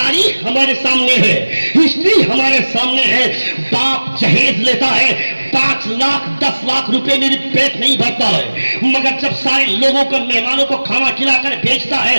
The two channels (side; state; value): both; inverted; correlation -1.00